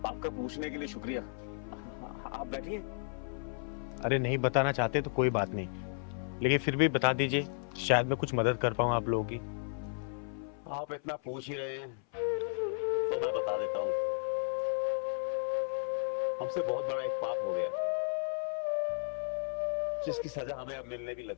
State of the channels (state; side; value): silent; right; 55 dB below the other